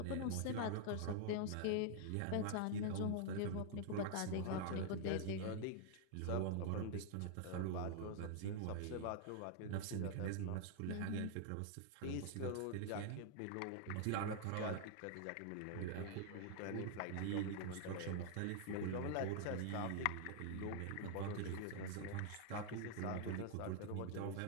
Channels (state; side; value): different; both; correlation 0.00